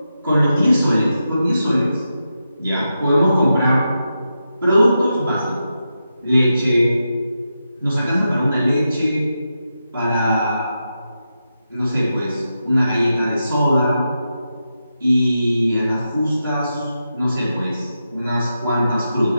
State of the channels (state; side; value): inverted; both; correlation -0.88